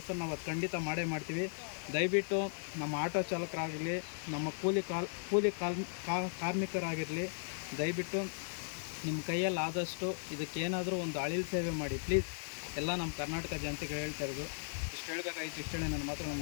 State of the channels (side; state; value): right; silent; digital silence